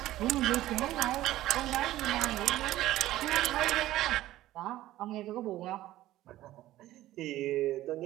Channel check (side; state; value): left; quieter; 15.0 dB